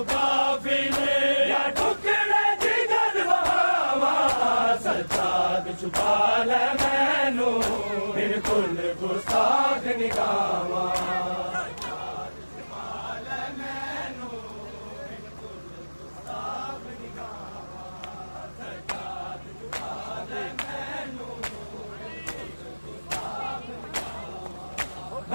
काफी ने या टुकड़े जिगर वहावा सज्जाद छुपा ले मैनू बिल्कुल गुस्ताख निगामा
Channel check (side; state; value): both; inverted; correlation -1.00